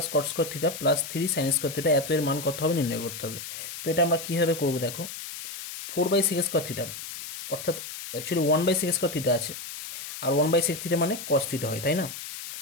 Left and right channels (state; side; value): noise; left; hiss, 9 dB below the sound